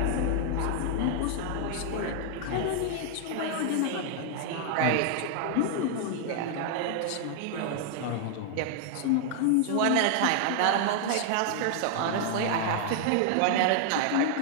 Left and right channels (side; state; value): both; different; correlation 0.00